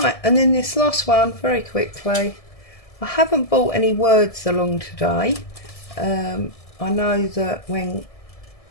and then this last one, very quickly. I haven't brought any words along today. I know that when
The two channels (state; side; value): late; right; 1.7 ms